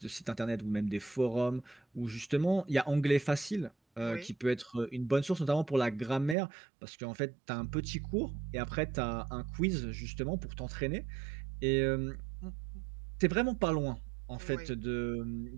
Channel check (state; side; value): drops out; left; at 6.4 s